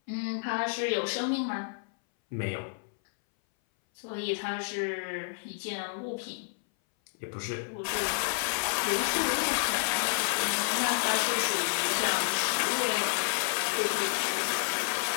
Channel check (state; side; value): silent; right; 58 dB below the other